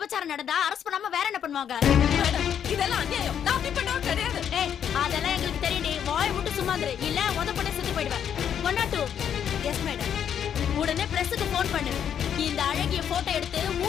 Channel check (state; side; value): quieter; right; 8.8 dB